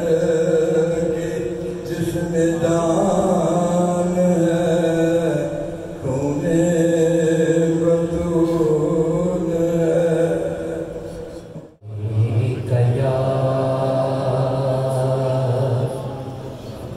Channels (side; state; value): both; identical; correlation 1.00